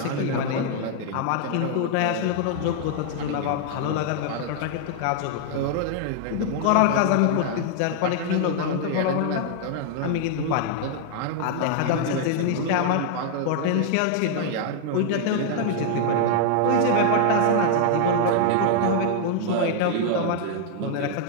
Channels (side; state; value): both; different; correlation -0.01